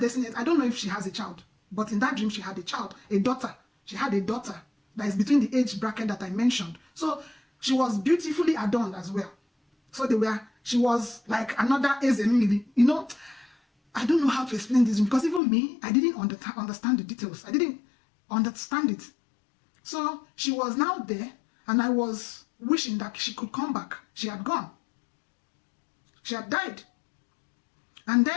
I don't know if she has a child, but in that dream she had a child, a daughter. She had a daughter that is between the age bracket that I mentioned. So she was beautifully adorned as well. So she was like another Ezemili. You know, I don't know how to explain this because even me, I didn't understand the details. I didn't understand it. So she was now there, and I was wishing that she could come back. She had gone. She had died. And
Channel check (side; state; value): right; drops out; at 15.4 s